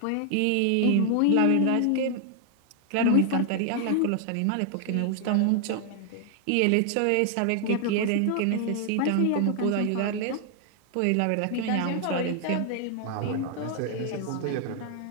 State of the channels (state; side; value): different; both; correlation 0.00